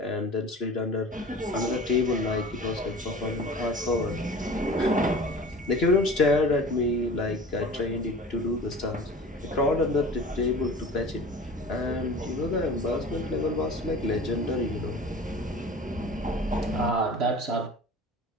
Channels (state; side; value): normal; both; correlation 0.40